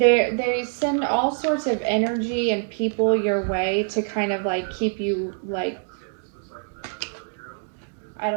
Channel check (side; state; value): left; silent; 62 dB below the other